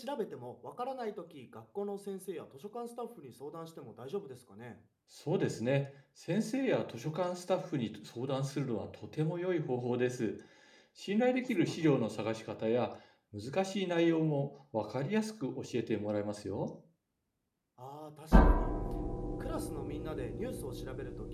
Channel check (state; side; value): identical; both; correlation 1.00